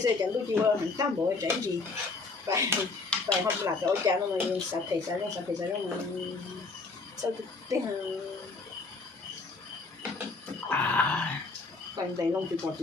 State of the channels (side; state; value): right; quieter; 3.9 dB